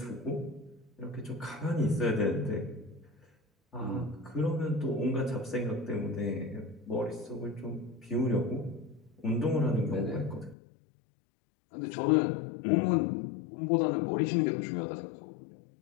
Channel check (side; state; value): right; drops out; at 10.6 s